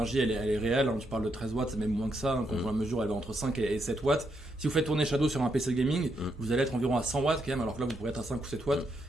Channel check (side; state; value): both; normal; correlation 0.79